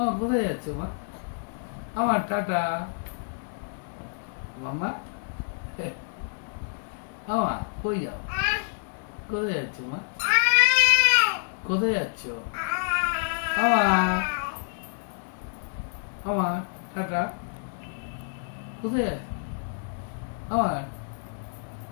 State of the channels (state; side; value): silent; right; digital silence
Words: কোথায় যাচ্ছ মা? আমার টাটা মামা। আমা কই যাও? কোথায় যাচ্ছ মা? কোথায় যাচ্ছ? আমা আমার টাটা কোথায় যাচ্ছ? আমার